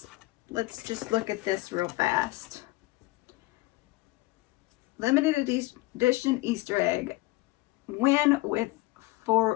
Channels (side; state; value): right; quieter; 20.3 dB